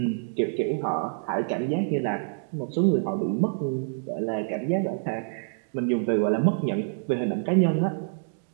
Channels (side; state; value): left; silent; digital silence